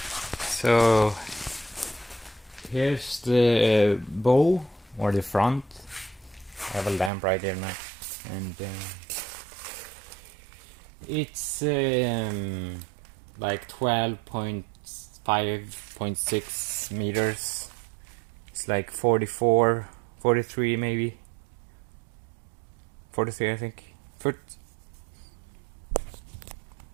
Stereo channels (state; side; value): drops out; left; at 7.1 s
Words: So here's the bow or the front. I have a lamp right there now, and it's like 12.5.6 meters. It's like 44, 43 maybe. 43 I think. Foot.